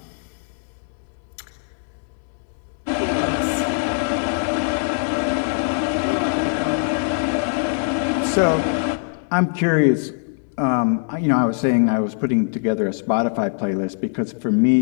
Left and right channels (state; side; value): silent; right; 64 dB below the other